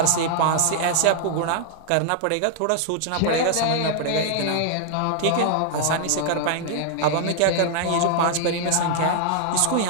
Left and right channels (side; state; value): both; different; correlation -0.01